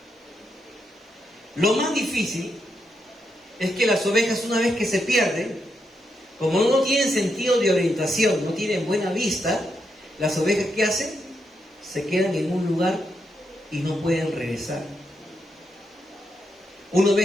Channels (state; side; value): normal; both; correlation 0.82